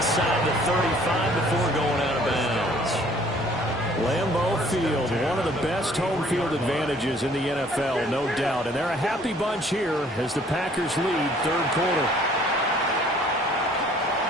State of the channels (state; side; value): normal; both; correlation 0.57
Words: the 35 before going out of bounds. Lambeau Field, one of the best home field advantages in the NFL, no doubt. And they're a happy bunch here as the Packers lead third quarter.